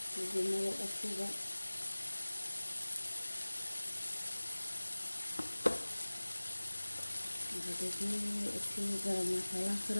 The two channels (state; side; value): inverted; both; correlation -1.00